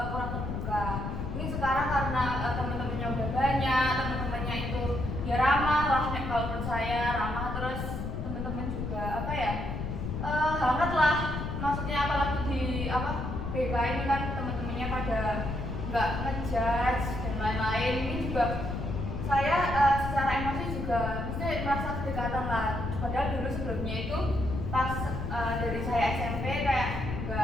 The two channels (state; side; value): noise; left; rumble, 4 dB below the sound